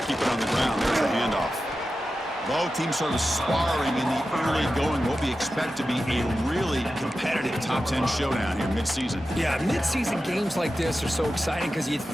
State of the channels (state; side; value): normal; both; correlation 0.92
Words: Keep it on the ground. There's the handoff. Both teams sort of sparring in the early going. What we expect to be a really competitive top 10 showdown here mid-season. Yeah, mid-season games like this are so exciting because you